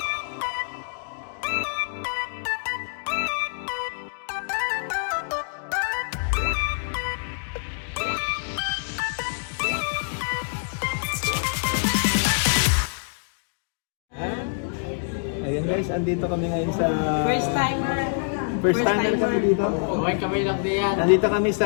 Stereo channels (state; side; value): silent; right; digital silence